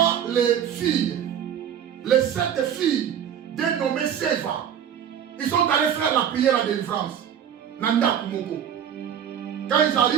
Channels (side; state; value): left; quieter; 9.0 dB